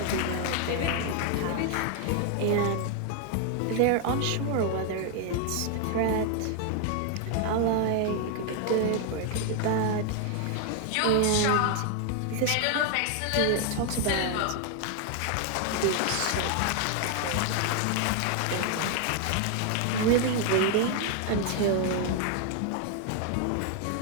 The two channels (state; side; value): different; both; correlation 0.00